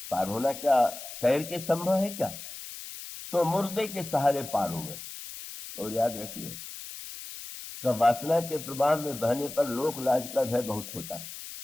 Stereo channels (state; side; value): noise; left; hiss, 11 dB below the sound